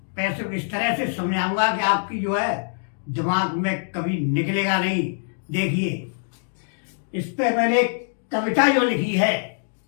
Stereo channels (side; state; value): right; silent; digital silence